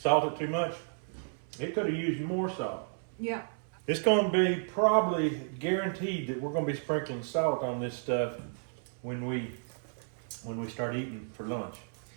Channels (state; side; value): silent; left; 56 dB below the other